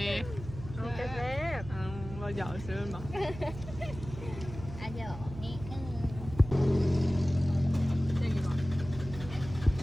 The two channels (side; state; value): right; noise; hum, 12 dB below the sound